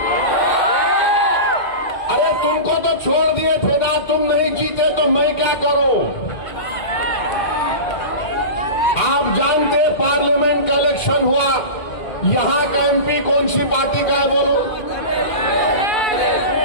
अरे तुमको तो छोड़ दिए थे ना, तुम नहीं जीते तो मैं क्या करूं? आप जानते हैं पार्लियामेंट का इलेक्शन हुआ, यहां का एमपी कौन सी पार्टी का है? बोलो,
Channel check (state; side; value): late; right; 2.1 ms